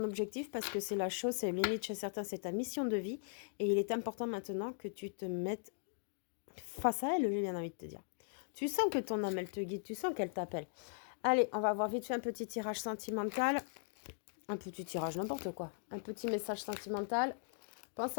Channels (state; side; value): silent; right; digital silence